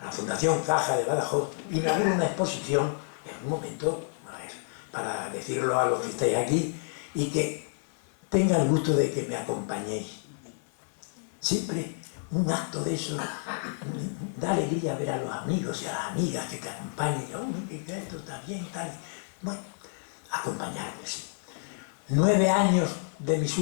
la Fundación Caja de Badajoz, inaugura una exposición, en un momento, para decirlo a los que estáis aquí, y que tenga el gusto de que me acompañéis. Siempre un acto de eso da alegría ver a los amigos y a las amigas que te acompañen, y que esto está bien, tal. Bueno, acompañarme, sí. 9 años de mis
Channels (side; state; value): right; silent; 58 dB below the other